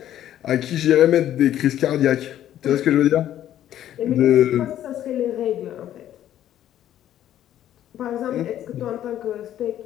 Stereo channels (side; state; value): right; quieter; 11.7 dB